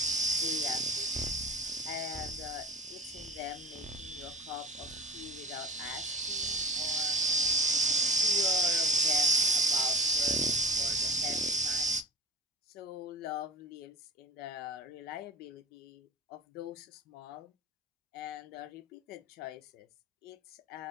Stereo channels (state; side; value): normal; both; correlation 0.32